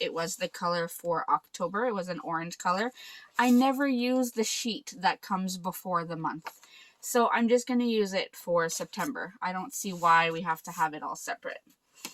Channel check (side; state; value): both; identical; correlation 1.00